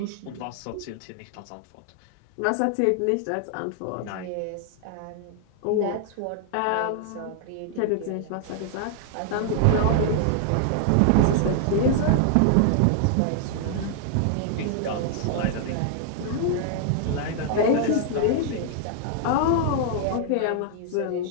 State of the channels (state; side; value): different; both; correlation 0.00